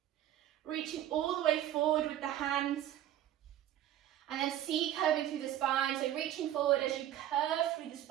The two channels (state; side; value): quieter; left; 12.2 dB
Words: reaching all the way forward with the hands, and then C curving through the spine, so reaching forward as you curve through the